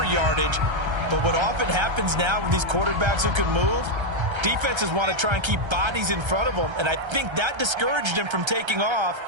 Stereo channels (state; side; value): late; left; 1.3 ms